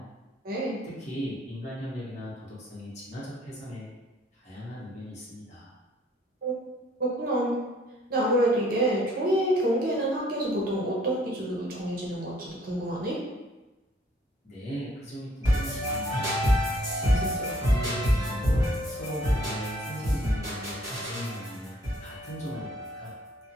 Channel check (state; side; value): normal; both; correlation 0.61